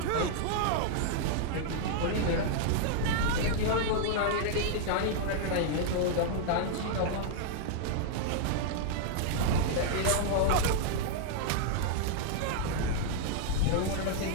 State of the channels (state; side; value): different; both; correlation -0.01